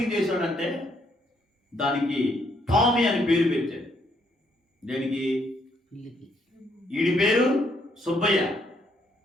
చేశాడంటే దానికి టామీ అని పేరు పెట్టాడు. దానికి వీడి పేరు సుబ్బయ్య,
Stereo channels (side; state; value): both; normal; correlation 0.72